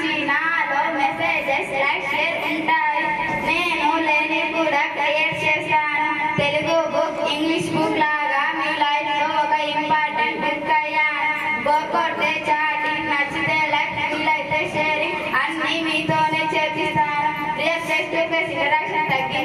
నాలో మెసేజెస్ లైక్ షేర్ ఉంటాయి. నేను లేని కూడా క్రియేట్ చేస్తాను. తెలుగు బుక్ ఇంగ్లీష్ బుక్ లాగా మీ లైఫ్ లో ఒక ఇంపార్టెంట్ బుక్ అయ్యాను. బోర్ కొడితే చాటింగ్, నచ్చితే లైక్, వీలైతే షేరింగ్ అన్ని మీతోనే చేపిస్తాను. Real face to face interaction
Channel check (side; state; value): both; identical; correlation 1.00